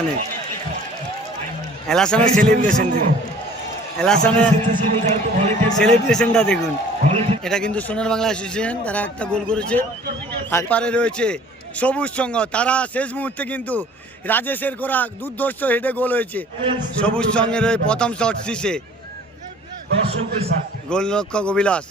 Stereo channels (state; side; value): normal; both; correlation 0.51